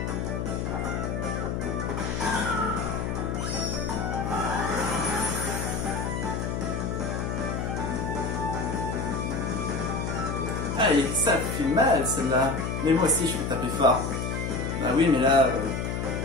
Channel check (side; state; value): left; noise; hum, 2 dB below the sound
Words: Allez, ça fait mal celle-là. Mais moi aussi je peux taper fort. Bah oui, mais là,